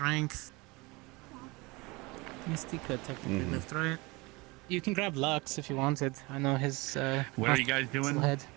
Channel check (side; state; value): left; quieter; 24.7 dB